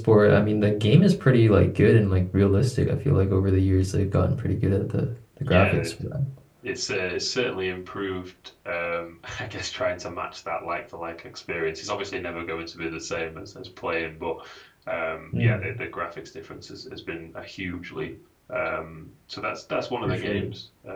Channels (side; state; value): both; identical; correlation 1.00